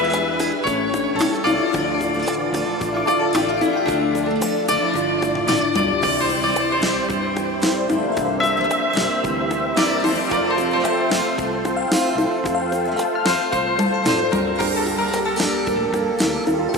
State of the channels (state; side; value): normal; both; correlation 0.44